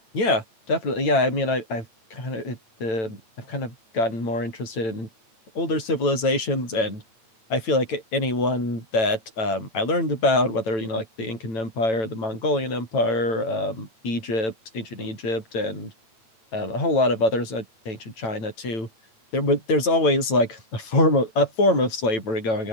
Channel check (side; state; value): right; late; 9.0 ms